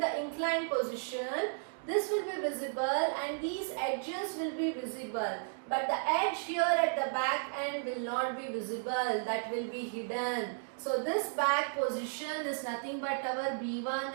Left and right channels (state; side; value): silent; left; digital silence